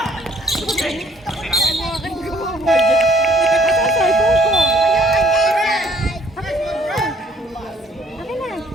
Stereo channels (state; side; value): normal; both; correlation 0.60